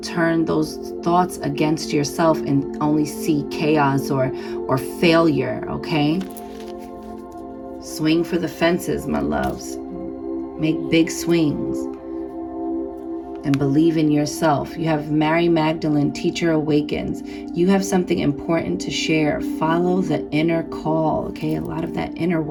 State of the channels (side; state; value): both; identical; correlation 1.00